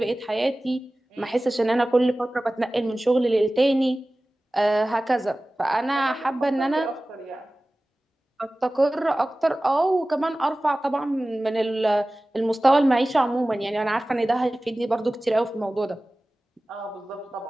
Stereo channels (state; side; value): normal; both; correlation 0.97